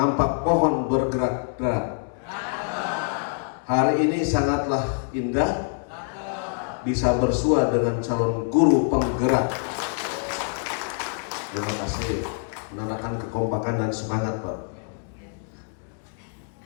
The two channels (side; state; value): right; silent; 61 dB below the other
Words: pohon bergerak-gerak. Hari ini sangatlah indah, bisa bersua dengan calon guru penggerak. Terima kasih, menandakan kekompakan dan semangat, Pak.